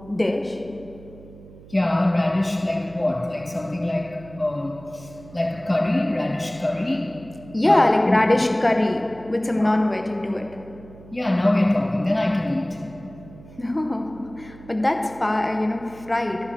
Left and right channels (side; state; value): right; noise; hum, 20 dB below the sound